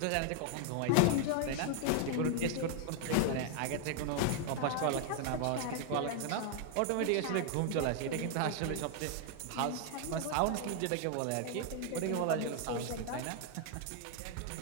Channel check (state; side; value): different; both; correlation 0.00